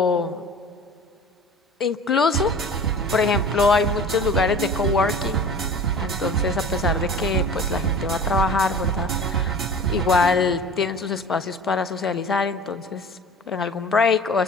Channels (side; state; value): both; normal; correlation 0.40